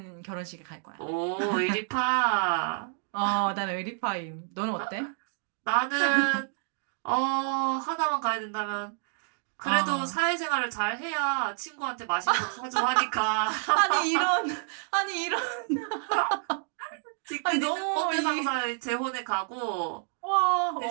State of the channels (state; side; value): silent; left; digital silence